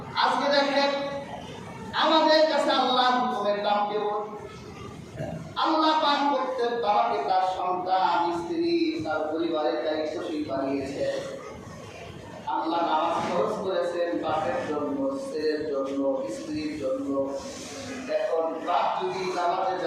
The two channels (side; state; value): both; identical; correlation 1.00